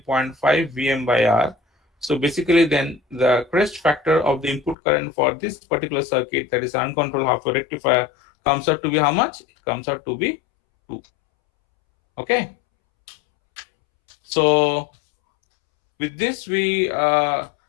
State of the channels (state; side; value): drops out; right; at 4.8 s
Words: Vm by R. So basically then the crest factor of the input current for this particular circuit, that is uncontrolled half wave rectifier, comes out to be how much? It comes out to be 2. Okay, so with this we